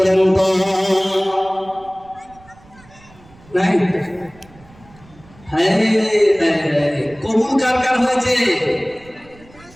তো। নাই? কবুল কার কার হয়েছে?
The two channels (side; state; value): right; noise; rumble, 25 dB below the sound